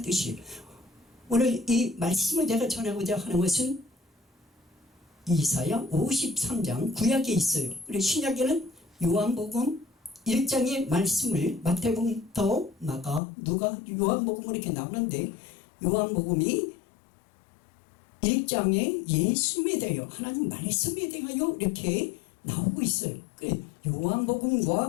뜻이에요. 오늘 이 말씀을 제가 전하고자 하는 것은 이사야 53장 구약에 있어요. 그리고 신약에는 요한복음 1장의 말씀을 마태복음부터 마가, 누가, 요한복음으로 이렇게 나오는데, 요한복음이 1장에 예수님에 대하여 하나님 말씀에 대하여 이렇게 나오고 있어요.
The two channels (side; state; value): right; drops out; at 13.2 s